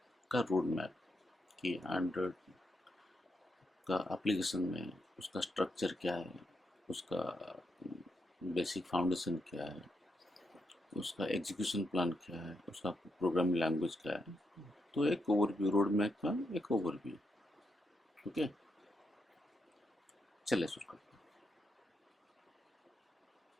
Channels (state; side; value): normal; both; correlation 0.81